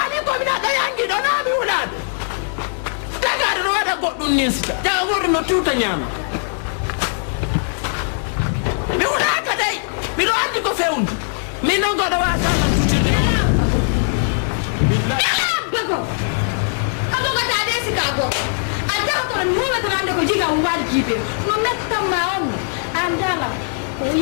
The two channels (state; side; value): silent; right; 58 dB below the other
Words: komi naɗa yangiɗo naami wuɗano tagaɗo no waɗa goɗɗum ninsita jaga goɗɗo no tuta ñaama mi wuɗaka dey miɗo andi ko fewndu min noon goɗo wasanan tutirde bago abogata de sika goto a jawtono mi huwatanande ko jiga waɗi jiibe no mettanma on an dala ko